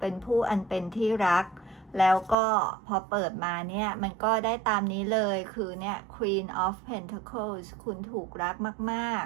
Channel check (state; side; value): drops out; left; at 2.4 s